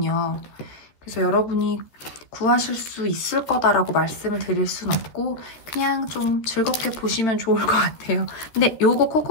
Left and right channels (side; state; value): right; late; 13 ms